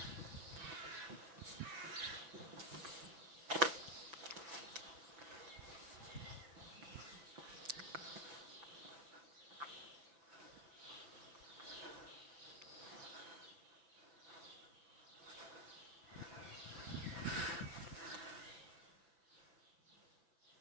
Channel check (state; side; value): late; left; 6.0 ms